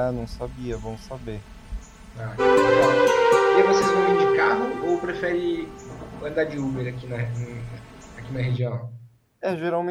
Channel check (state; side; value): identical; both; correlation 1.00